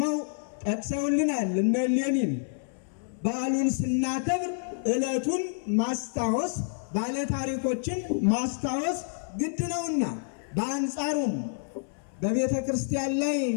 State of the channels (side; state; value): right; silent; 59 dB below the other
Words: ጠቅሰውልናል። እነ ሌኒን በዓሉን ስናከብር ዕለቱን ማስታወስ ባለታሪኮችን ማስታወስ ግድ ነውና፣ በአንጻሩም በቤተ ክርስቲያን ላይ